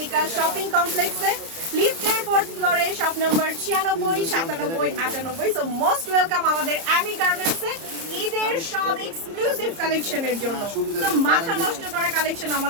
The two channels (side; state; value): left; late; 30 ms